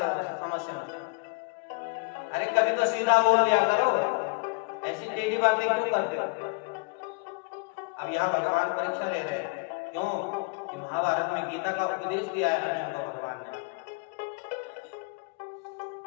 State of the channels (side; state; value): right; quieter; 30.5 dB